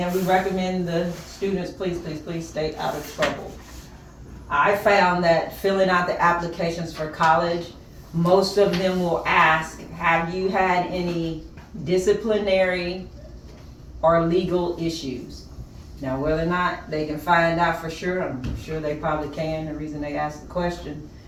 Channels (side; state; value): both; identical; correlation 1.00